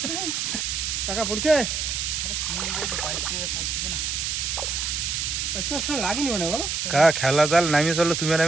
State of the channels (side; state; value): right; noise; hiss, 1 dB below the sound